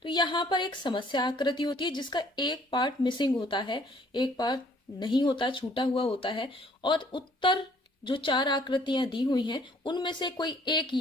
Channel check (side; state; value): both; normal; correlation 0.60